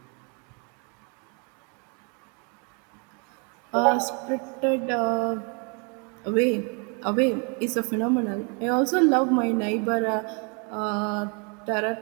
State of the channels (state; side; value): quieter; left; 35.6 dB